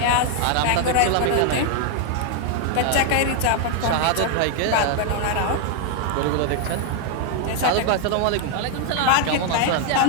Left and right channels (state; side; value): different; both; correlation 0.00